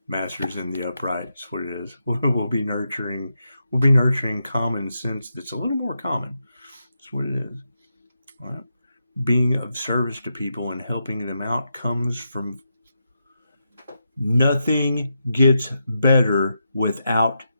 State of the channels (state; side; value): inverted; both; correlation -0.85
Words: Masters in the upright. That's what it is. We'll be nurturing common sense that's a little more common. That's what it is. All right. Being of service to people and helping them out comes from nothing gets better without